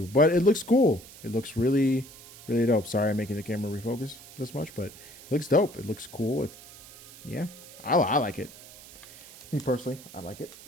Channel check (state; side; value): noise; right; hiss, 19 dB below the sound